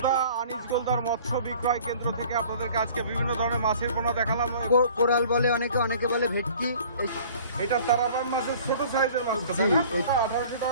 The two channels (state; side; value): inverted; both; correlation -0.49